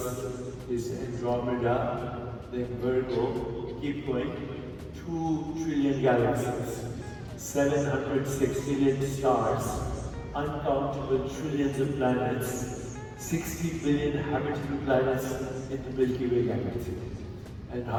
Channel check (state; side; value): identical; both; correlation 1.00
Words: is Andromeda, then Virgo. Keep going. 2 trillion galaxies, 700 sextillion stars, uncountable trillions of planets, 60 billion habitable planets in the Milky Way galaxy. And